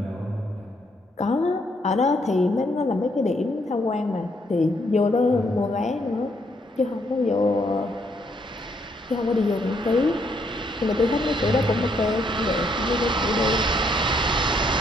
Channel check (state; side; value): normal; both; correlation 0.72